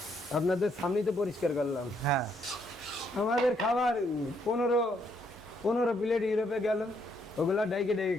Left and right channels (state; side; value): normal; both; correlation 0.73